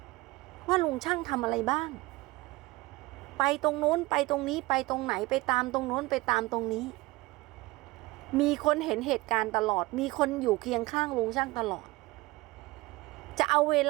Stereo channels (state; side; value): quieter; left; 21.5 dB